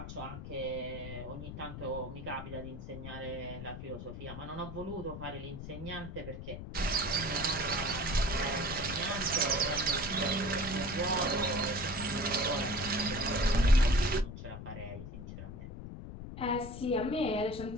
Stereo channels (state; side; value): noise; left; rumble, 9 dB below the sound